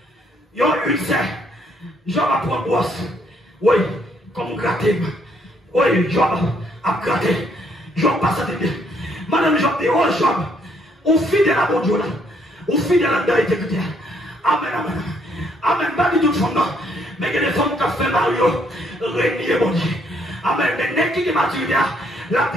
Il y a une serre. Jean va prendre brosse. Oui, comme gratter. Oui, Jean a gratté. Jean passe à bien. Madame Jean dit, oh Jean, on fidèle à mon Dieu là. On fidèle à la intégrité. Amen, amen. Amen. Pas du tout de fond, non. Mais il y a des femmes qui ont fait Mario, régner mon Dieu. Amen. Mais n'est-ce qui est maturité, là,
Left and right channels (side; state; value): both; normal; correlation 0.69